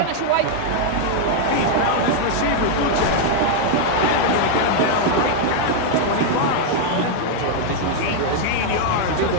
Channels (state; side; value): different; both; correlation 0.00